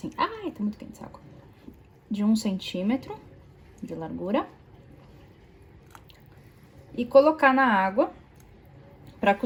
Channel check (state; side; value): identical; both; correlation 1.00